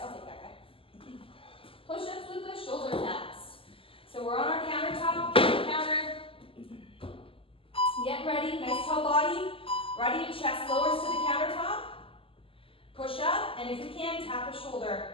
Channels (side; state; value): right; late; 0.26 ms